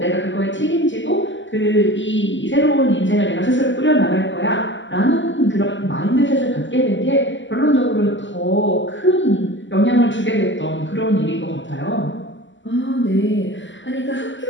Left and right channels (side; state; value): right; late; 0.54 ms